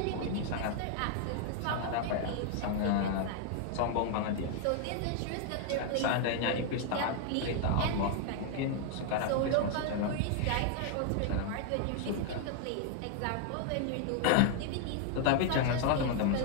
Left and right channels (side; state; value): both; different; correlation 0.00